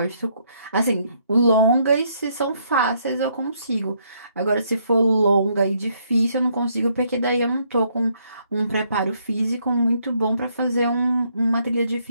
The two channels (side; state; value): both; inverted; correlation -0.71